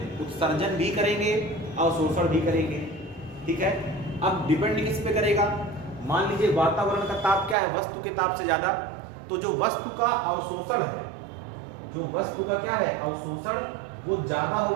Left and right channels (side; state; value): left; drops out; at 7.6 s